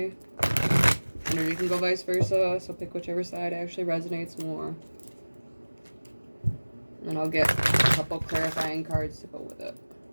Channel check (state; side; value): inverted; both; correlation -1.00